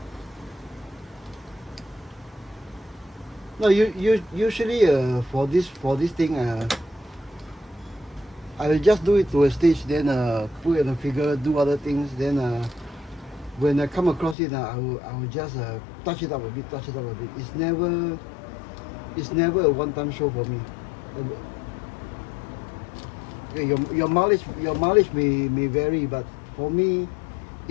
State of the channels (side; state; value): right; drops out; at 14.4 s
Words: No, usually for this thing, I will just do it to a stage, then put it on a figure, do other things. Then when I come across it, I will just touch it up a bit. It's never a one-time show for me. Okay, your mileage may vary, but for me,